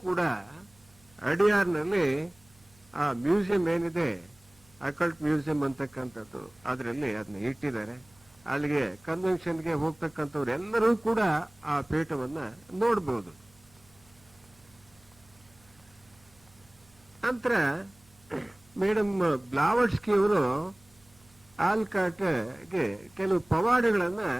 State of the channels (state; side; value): noise; right; hum, 29 dB below the sound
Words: ಕೂಡ ಅಡಿಯಾರ್ನಲ್ಲಿ ಆ ಮ್ಯೂಸಿಯಂ ಏನಿದೆ, ಅಕಲ್ಟ್ ಮ್ಯೂಸಿಯಂ ಅಂತಕ್ಕಂಥದ್ದು, ಅದರಲ್ಲಿ ಅದನ್ನ ಇಟ್ಟಿದ್ದಾರೆ. ಅಲ್ಲಿಗೆ ಕನ್ವೆನ್ಷನ್ಗೆ ಹೋಗ್ತಕ್ಕಂಥವ್ರು ಎಲ್ಲರೂ ಕೂಡ ಆ ಪೇಟವನ್ನ ನೋಡ್ಬೋದು. ನಂತರ ಮೇಡಮ್ ಬ್ಲಾವರ್ಸ್ಕಿ ಅವರು ಆಲ್ಕಾಟ್ಗೆ ಕೆಲವು ಪವಾಡಗಳನ್ನ